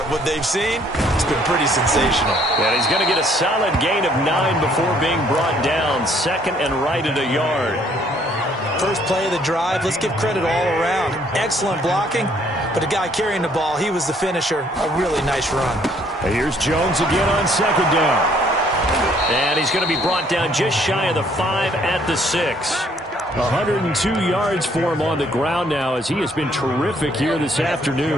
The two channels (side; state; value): both; normal; correlation 0.64